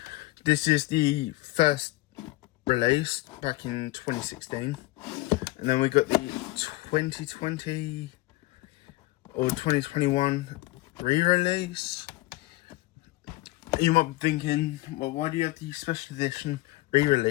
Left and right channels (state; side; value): quieter; right; 19.1 dB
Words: This is the first release back in 2016. And then we got the 2020 or 2021 re-release. You might be thinking, well, why do you have the special edition